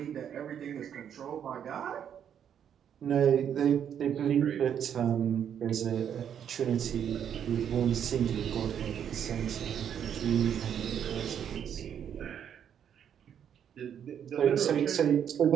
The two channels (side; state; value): left; quieter; 8.8 dB